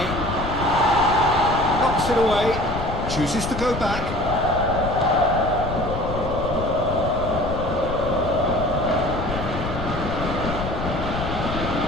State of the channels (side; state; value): left; noise; rumble, 6 dB below the sound